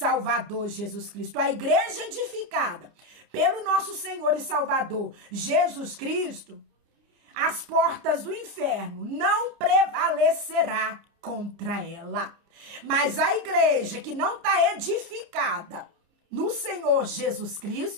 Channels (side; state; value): left; late; 29 ms